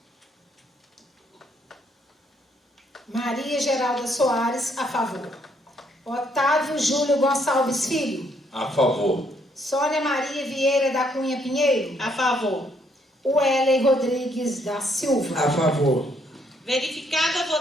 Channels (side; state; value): both; normal; correlation 0.70